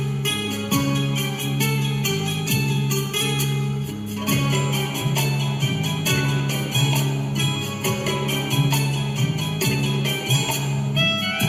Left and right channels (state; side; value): identical; both; correlation 1.00